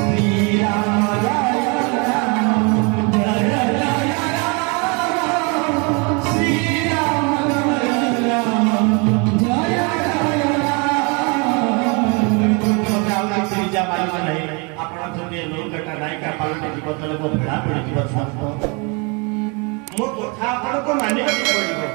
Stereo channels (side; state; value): left; quieter; 31.7 dB